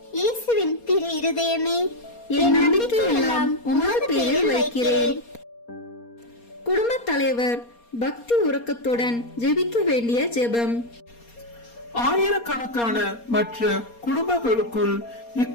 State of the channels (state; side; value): late; right; 4.3 ms